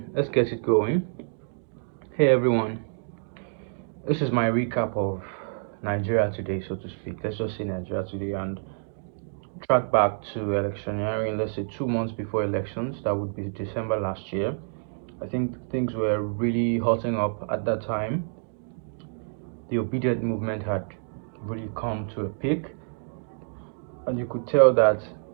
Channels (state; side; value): silent; left; digital silence